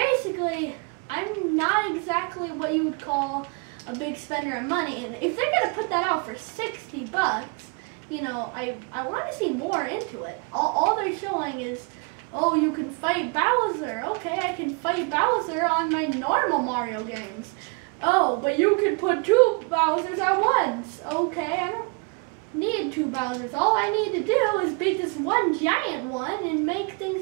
I'm not exactly what you would call a big spender of money. And if they're going to put that out for $60, you know, I want to see more into it. All they're showing is, oh, you can fight Bowser. Okay, I can fight Bowser on my normal Mario games. Oh, but you can put 2 Bowsers at once. Okay, I don't need 2 Bowsers. All I need to do is beat this one giant one and make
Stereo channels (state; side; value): quieter; left; 33.2 dB